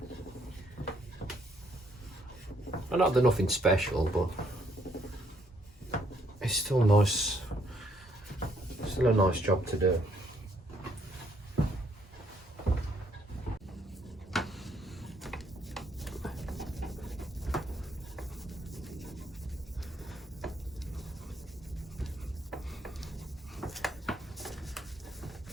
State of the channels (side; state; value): both; normal; correlation 0.70